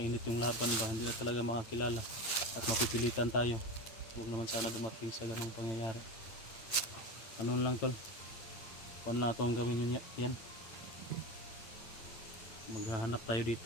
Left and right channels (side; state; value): right; late; 8.9 ms